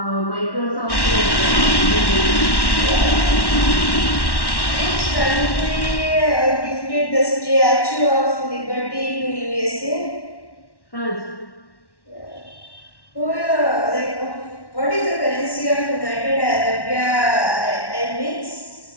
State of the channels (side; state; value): right; late; 1.1 ms